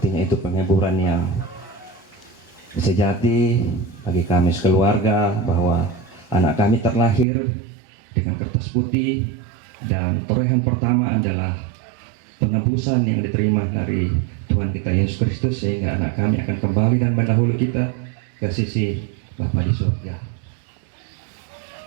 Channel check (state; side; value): drops out; left; at 7.2 s